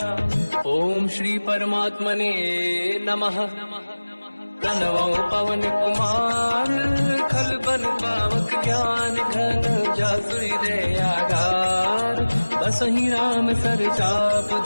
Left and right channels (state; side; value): inverted; both; correlation -1.00